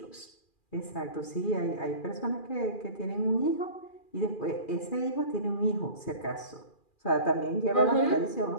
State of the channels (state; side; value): late; right; 2.4 ms